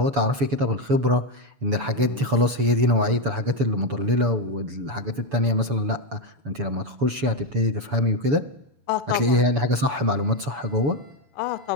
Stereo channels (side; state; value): left; late; 7.0 ms